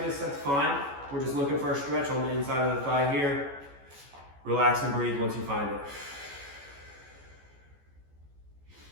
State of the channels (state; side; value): late; left; 14 ms